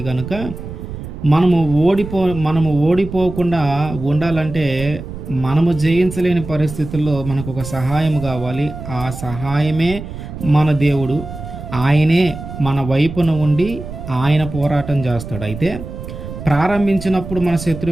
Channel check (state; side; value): noise; right; rumble, 10 dB below the sound